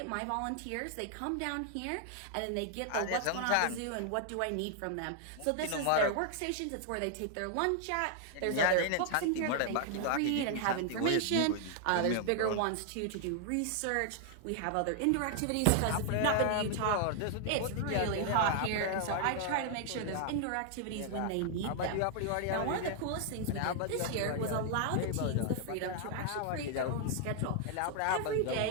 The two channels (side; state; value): both; different; correlation 0.00